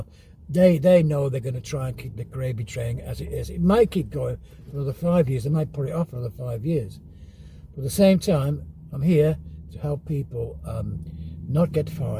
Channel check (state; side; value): identical; both; correlation 1.00